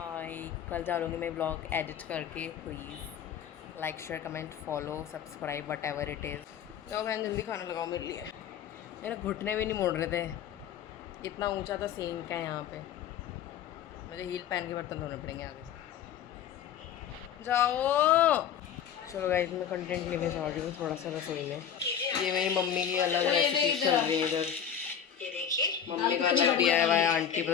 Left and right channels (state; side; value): quieter; right; 8.7 dB